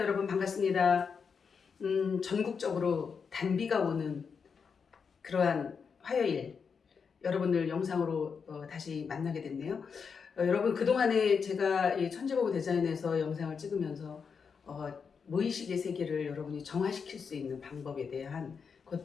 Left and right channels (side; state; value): right; quieter; 6.0 dB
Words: 반갑습니다. 전국적으로 단비가 오는 그러한 화요일 여러분들 영상으로 다시 만나게 됐네요. 여러분 그동안에 제가 이 천재보고 디자인에서 영상을 찍으면서 무의식의 세계를 여러분이 정화시킬 수 있는 방법에 대한